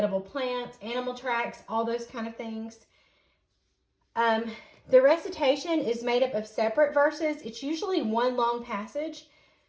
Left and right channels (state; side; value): identical; both; correlation 1.00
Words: plants, animal tracks, all those kind of things. The recitation is made up of separate verses. It's usually one long passage,